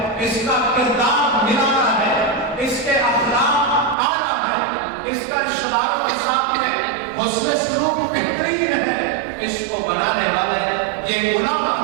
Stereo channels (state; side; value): drops out; left; at 4.0 s